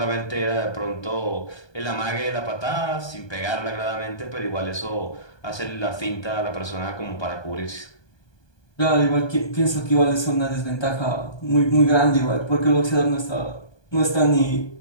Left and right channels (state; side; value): late; right; 1.2 ms